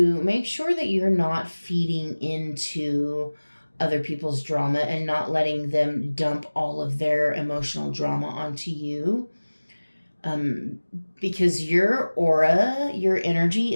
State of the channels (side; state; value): both; inverted; correlation -1.00